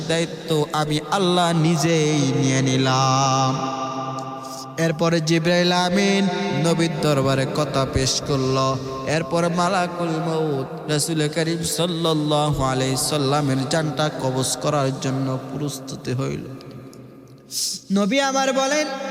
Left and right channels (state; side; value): identical; both; correlation 1.00